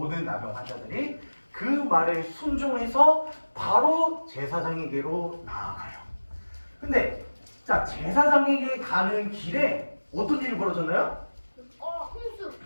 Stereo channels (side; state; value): both; inverted; correlation -1.00